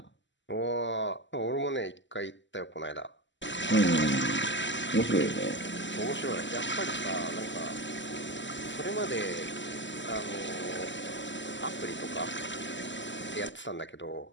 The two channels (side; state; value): right; late; 0.54 ms